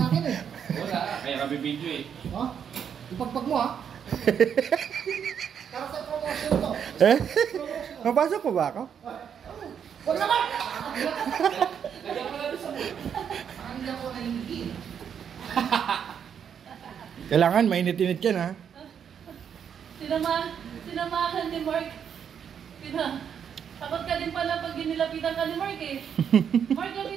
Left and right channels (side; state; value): left; quieter; 8.0 dB